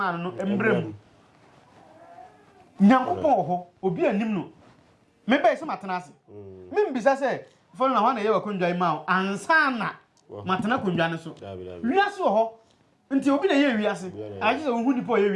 no embrem nyankopon ho obi anim no me be se matena ase me mbisa se fo na wana ye wa konjwa ima ansana matena konjwa ne so wiase ho nti obi na ye wiase aje se hu nipo ye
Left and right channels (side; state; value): both; identical; correlation 1.00